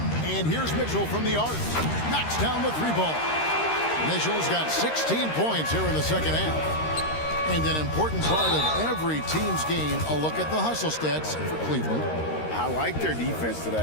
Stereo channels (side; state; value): right; late; 13 ms